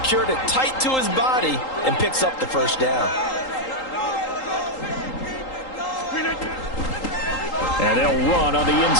it tight to his body and picks up the first down. And they'll run on the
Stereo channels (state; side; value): late; right; 3.8 ms